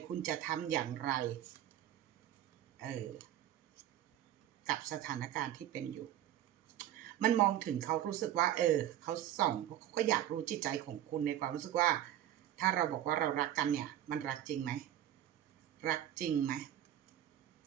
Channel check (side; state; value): left; quieter; 11.9 dB